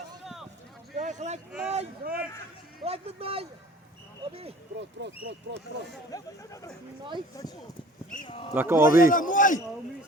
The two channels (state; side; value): normal; both; correlation 0.48